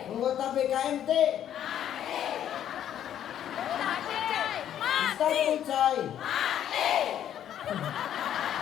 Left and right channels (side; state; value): right; quieter; 10.4 dB